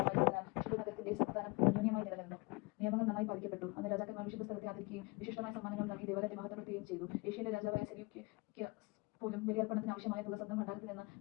വിശുദ്ധ നഗരത്തിന്റെ സമാധാനം അന്യോന്യമായി നിലനിന്നു. നിയമങ്ങൾ നന്നായി പാലിക്കപ്പെട്ടു. അന്ന് രാജാക്കന്മാർ വിശുദ്ധ സ്ഥലത്തെ ആദരിക്കുകയും വിശിഷ്ടമായ സമ്മാനങ്ങൾ നൽകി ദേവാലയത്തെ മഹത്വപ്പെടുത്തുകയും ചെയ്തു. ഏഷ്യയിലെ രാജാവായ സെല്യൂക്കിക്ക് പോലും ബലിയർപ്പണത്തിന് ആവശ്യമായ തുക സ്വന്തം ഭണ്ഡാരത്തിൽ നിന്ന്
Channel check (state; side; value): quieter; right; 26.0 dB